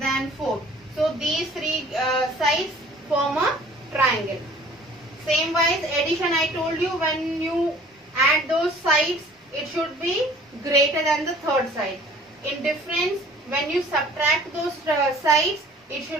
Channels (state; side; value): normal; both; correlation 0.51